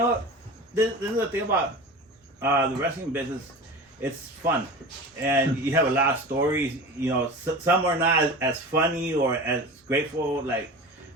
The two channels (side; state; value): both; normal; correlation 0.33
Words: this is the thing about the wrestling business. It's fun, and you have a lot of stories. You know, some are not as funny or as grateful like